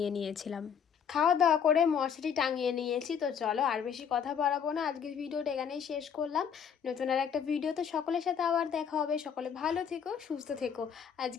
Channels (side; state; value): right; quieter; 7.5 dB